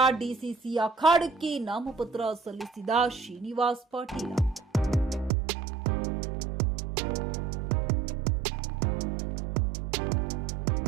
ಡಿಸಿಸಿ ಅಖಾಡಕ್ಕೆ ನಾಮಪತ್ರ ಸಲ್ಲಿಸಿದ ಶ್ರೀನಿವಾಸ್ ಪಾಟೀಲ್.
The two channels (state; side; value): drops out; left; at 5.3 s